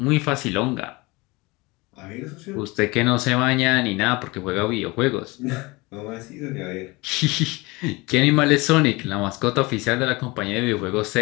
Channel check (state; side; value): quieter; right; 24.0 dB